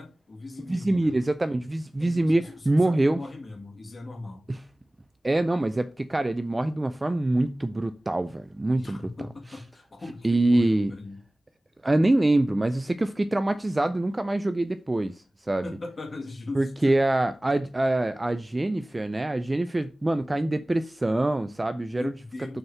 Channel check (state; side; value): normal; both; correlation 0.98